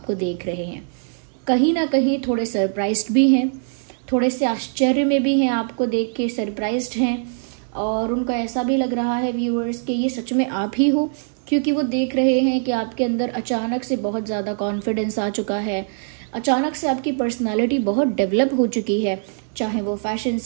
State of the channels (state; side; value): silent; left; digital silence